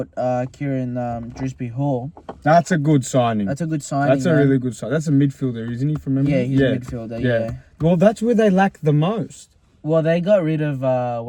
Kieran Dewsbury Hall. That's a good signing. That's a good signing. That's a really good signing. That's a midfielder, isn't he? From memory? Yeah, he's a midfielder. Yeah. Well, that's where they lack the most. Well, they got rid of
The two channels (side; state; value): both; identical; correlation 1.00